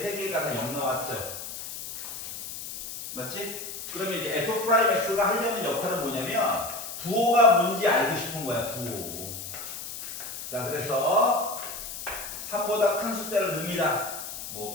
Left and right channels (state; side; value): noise; left; hiss, 8 dB below the sound